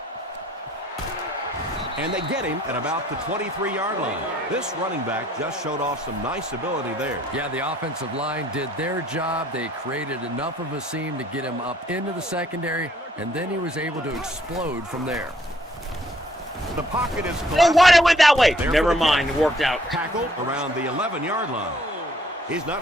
And they get him at about the 23-yard line. This running back just showed off some nice ability there. Yeah, the offensive line did their job. They created enough of a seam to get him up into the secondary, and then he was able to explode from there. The pocket is Oh, collapsed. why it went that way? There Never for the mind, catch. it worked out. Tackled around the 11-yard line. He's not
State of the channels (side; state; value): both; normal; correlation 0.62